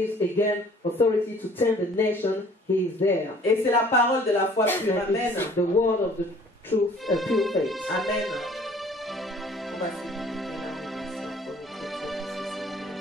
again authority to tend the nation, he is there. Et c'est la parole de la foi pure. And Amen. it's the word of the truth, pure faith. Amen. On va finir.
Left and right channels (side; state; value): both; normal; correlation 0.54